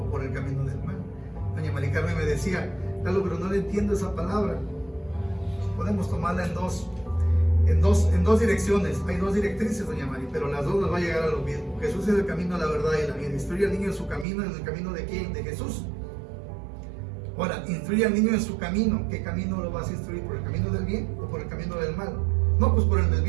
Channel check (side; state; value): left; drops out; at 14.2 s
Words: por el camino del mal? Doña Mari Carmen me decía: Lalo, pero no le entiendo esa palabra. Podemos tomarla en dos direcciones. Hay 2 directrices, doña Mari, pero las 2 nos va a llegar a lo mismo. Jesús es el camino, la verdad y la vida. Instruye al niño en su camino. ¿En el camino de quién? De Jesús. Ahora, instruye al niño en su camino. ¿Qué camino lo vas a instruir? ¿Por el camino del bien o por el camino del mal? No, pues por el del